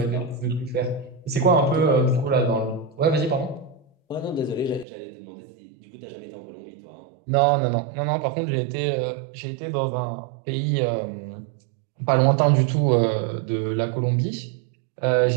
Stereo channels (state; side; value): drops out; left; at 4.9 s